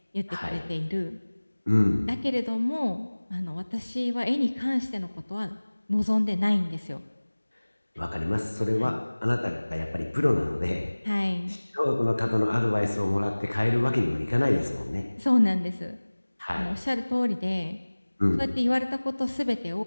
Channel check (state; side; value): inverted; both; correlation -1.00